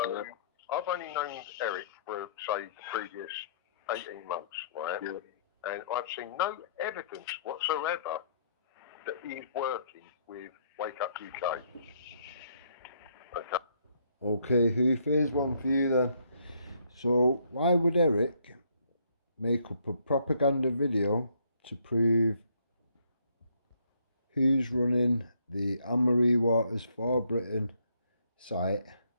I've only known Eric for, say, the previous 18 months, right? Yeah. And I've seen no evidence whatsoever that he's working with Wake Up UK. Okay, Hoof, here's one for you then. So, why would Eric make up a propaganda video to prove who's running the Anne-Marie Waters for Britain site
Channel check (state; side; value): inverted; both; correlation -0.68